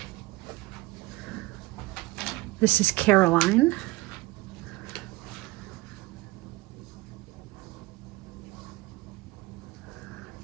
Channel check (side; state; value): left; quieter; 21.0 dB